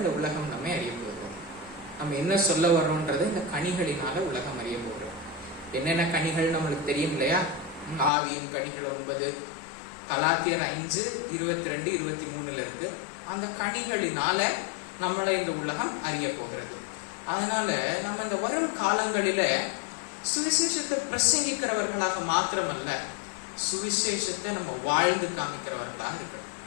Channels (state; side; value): drops out; right; at 8.1 s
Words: உலகம் நம்மை அறிய போகிறது. நம்ம என்ன சொல்ல வர்றோம்ன்றது இந்த கனிகளினால உலகம் அறிய போகிறோம். என்னென்ன கனிகள் நம்மளுக்கு தெரியும் இல்லையா? ஆவியின் கனிகள் 9, கலாத்தியர் 5:22-23 இருக்கு. அந்த கனிகளினால நம்மளை இந்த உலகம் அறிய போகிறது. அதனால நம்ம இந்த வரும் காலங்களில சுவிசேஷத்தை பிரசங்கிக்கிறவர்களாக மாத்திரமல்ல, சுவிசேஷத்தை நம்ம வாழ்ந்து காமிக்கிறவர்களாக இருக்கணும்.